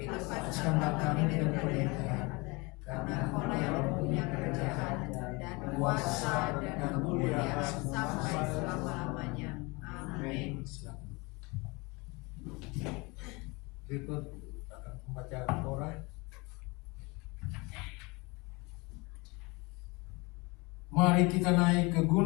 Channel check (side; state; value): right; quieter; 26.4 dB